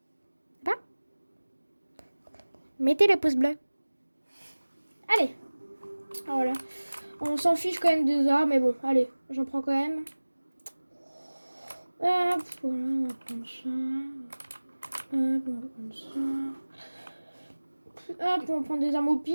Pas? Mettez le pouce bleu. Allez. Voilà. On s'en fiche quand même des armes, mais bon, allez, j'en prends quand même. Hop, voilà, on va prendre ça. Hop, on va prendre ça. Hop, on va prendre des armes au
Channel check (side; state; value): both; inverted; correlation -1.00